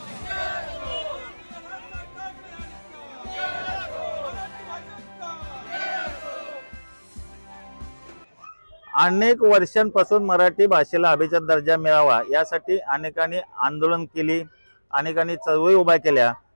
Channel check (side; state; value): both; inverted; correlation -1.00